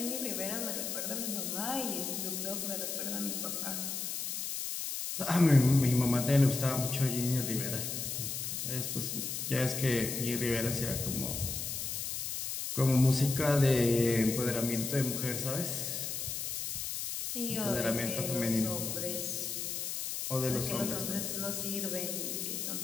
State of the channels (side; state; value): left; noise; hiss, 3 dB below the sound